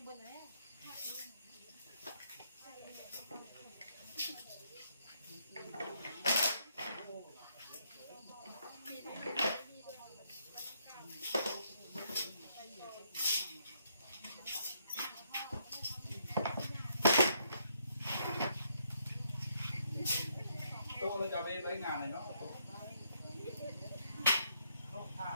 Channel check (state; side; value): inverted; both; correlation -0.73